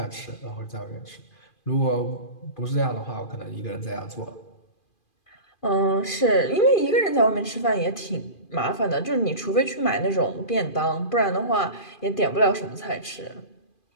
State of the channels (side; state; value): right; late; 2.4 ms